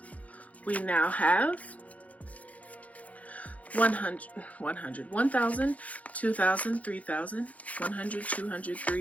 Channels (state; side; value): late; right; 0.069 ms